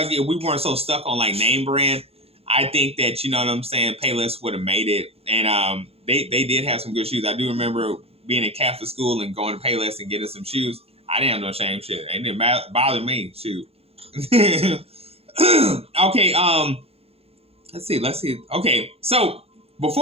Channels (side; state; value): left; late; 0.29 ms